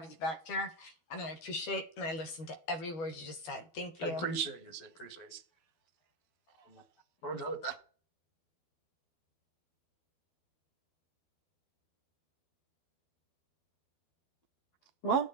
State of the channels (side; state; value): right; late; 12 ms